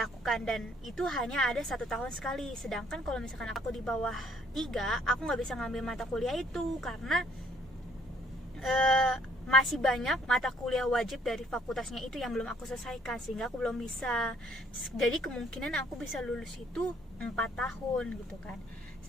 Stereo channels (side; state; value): both; normal; correlation 0.63